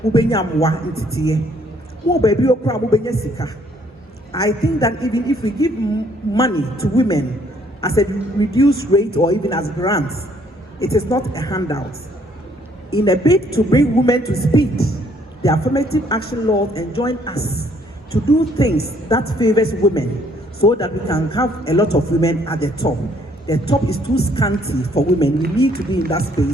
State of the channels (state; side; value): normal; both; correlation 0.65